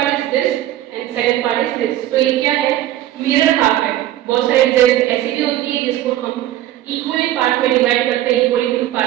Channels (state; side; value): quieter; left; 13.6 dB